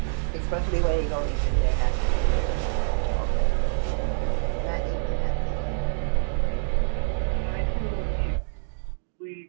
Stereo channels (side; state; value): left; silent; digital silence